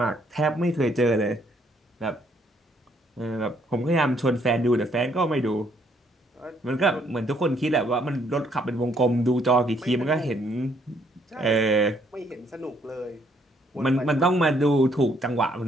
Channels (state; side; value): normal; both; correlation 0.68